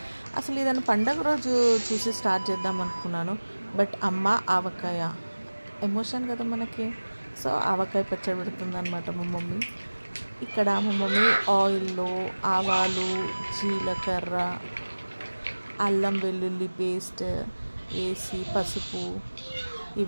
అసలు ఇదని పండగ రోజు చూసి స్టార్ట్ చేద్దాం అనుకున్నాను. బట్ అమ్మ ఆవకాయ ఎమోషన్ కదా మనకి. సో ఆవకాయ పచ్చడి పెడుతుంది అనమాట మా మమ్మీ. ఇక్కడ మా మమ్మీ ఆయిల్లో ఆవాలు, జీలకర్ర, అల్లం వెల్లుల్లి పేస్ట్ వేసి, పసుపు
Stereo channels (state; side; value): inverted; both; correlation -1.00